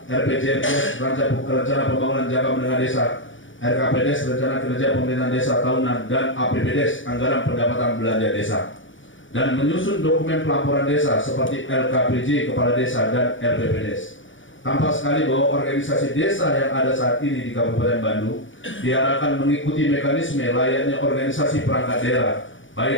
RPJPDes, Rencana Pembangunan Jangka Menengah Desa, RKPDes, Rencana Kinerja Pemerintahan Desa Tahunan, dan APBDes, Anggaran Pendapatan Belanja Desa, dan menyusun dokumen pelaporan desa seperti LKPJ, Kepala Desa, dan RPPDes. Tampak sekali bahwa organisasi desa yang ada saat ini di Kabupaten Bandung diarahkan mengikuti mekanisme layaknya organisasi perangkat daerah,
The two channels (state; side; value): late; right; 0.56 ms